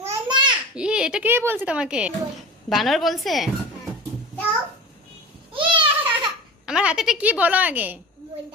এটা কে বলছে তোমাকে? বানর বলছে? আমার হাতেটা কি বলো আগে?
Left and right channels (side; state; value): both; normal; correlation 0.33